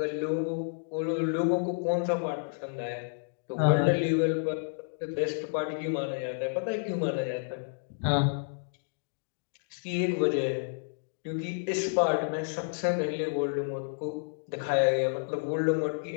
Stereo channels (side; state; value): right; silent; digital silence